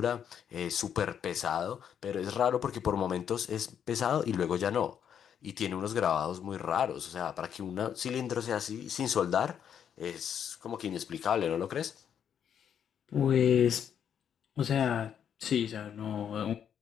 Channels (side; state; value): right; quieter; 8.6 dB